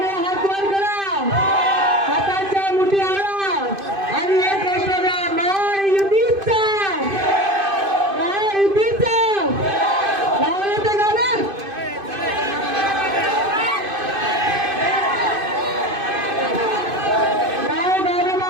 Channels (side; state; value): left; late; 2.5 ms